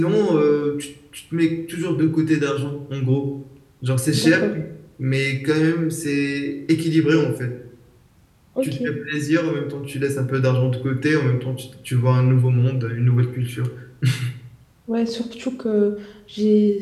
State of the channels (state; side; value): identical; both; correlation 1.00